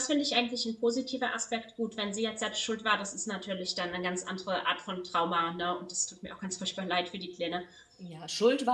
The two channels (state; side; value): identical; both; correlation 1.00